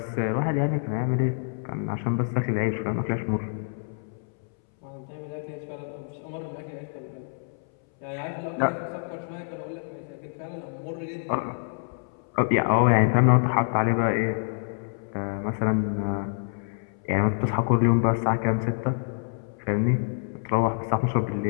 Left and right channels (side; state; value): right; silent; 60 dB below the other